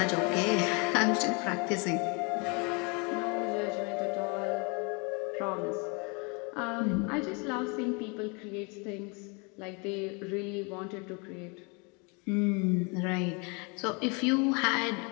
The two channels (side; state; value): right; quieter; 31.6 dB